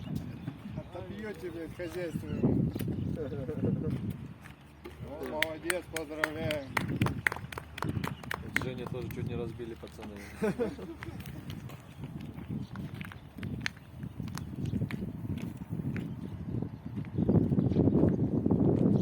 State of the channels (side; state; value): both; identical; correlation 1.00